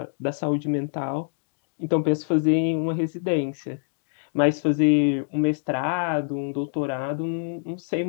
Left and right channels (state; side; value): silent; right; digital silence